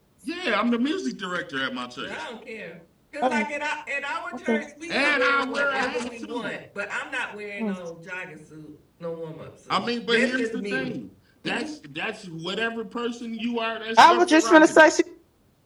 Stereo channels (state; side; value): identical; both; correlation 1.00